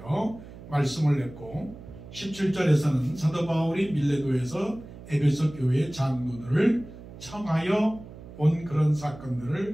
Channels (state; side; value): noise; right; hum, 16 dB below the sound